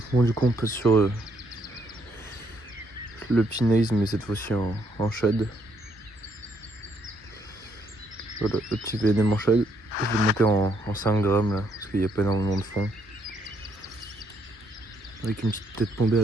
Bon du coup on passe sur le pinaise mais cette fois-ci en shad. Voilà, le petit VNM en shad. Je vais monter en 5 grammes là, parce qu'il n'y a pas énormément de fond. Avec une petite tête bombée à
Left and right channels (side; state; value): both; normal; correlation 0.72